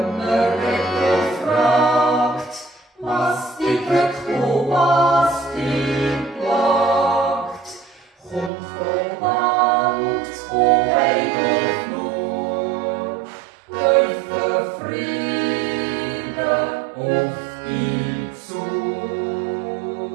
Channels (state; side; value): drops out; left; at 8.5 s